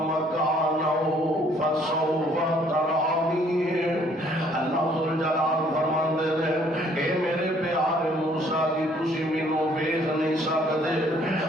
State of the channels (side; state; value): both; normal; correlation 0.62